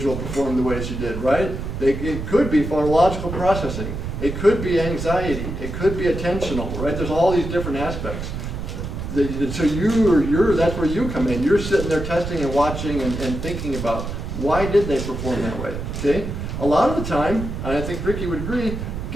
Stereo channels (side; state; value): right; noise; rumble, 6 dB below the sound